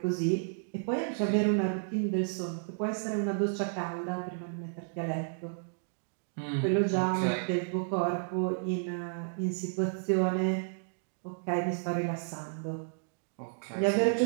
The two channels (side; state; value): left; silent; digital silence